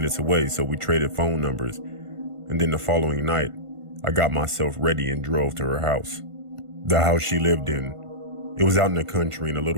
away, so we traded phone numbers, and then the following night, I got myself ready and drove to her house. The house she lived in, it was out in the country and a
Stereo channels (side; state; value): left; late; 1.5 ms